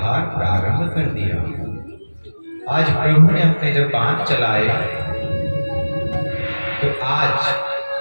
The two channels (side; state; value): both; inverted; correlation -1.00